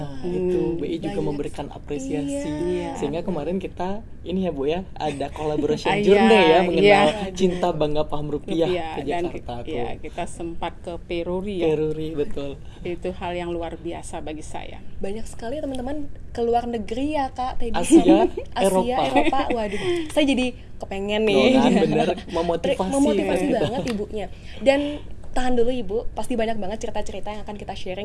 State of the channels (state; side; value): identical; both; correlation 1.00